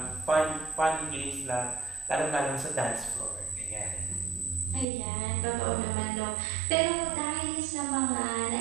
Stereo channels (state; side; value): drops out; left; at 4.9 s